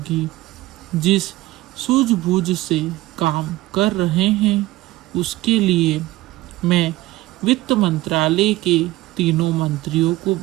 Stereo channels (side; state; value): left; quieter; 18.0 dB